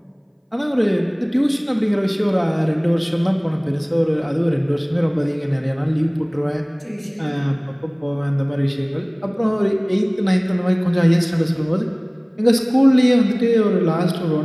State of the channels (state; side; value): identical; both; correlation 1.00